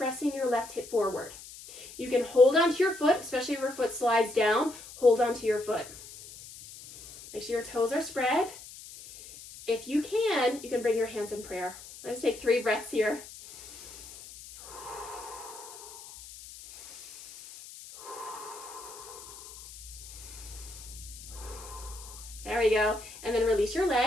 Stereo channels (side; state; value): left; noise; hiss, 16 dB below the sound